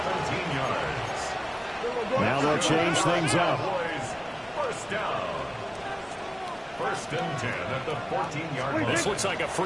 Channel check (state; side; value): identical; both; correlation 1.00